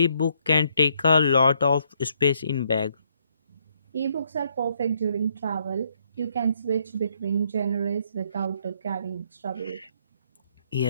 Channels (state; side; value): inverted; both; correlation -0.72